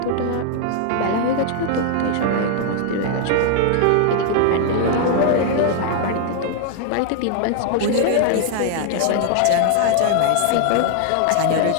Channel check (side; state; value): both; different; correlation 0.00